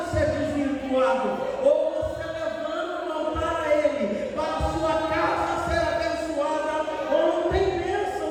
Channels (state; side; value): identical; both; correlation 1.00